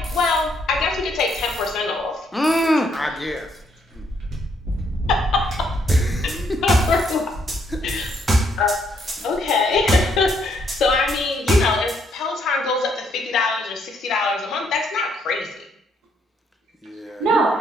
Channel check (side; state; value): both; normal; correlation 0.71